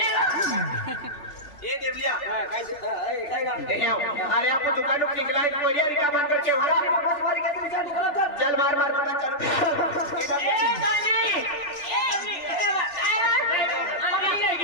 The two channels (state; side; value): late; right; 3.4 ms